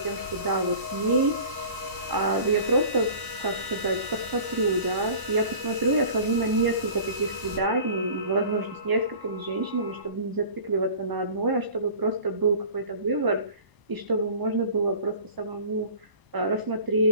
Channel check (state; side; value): late; left; 1.0 ms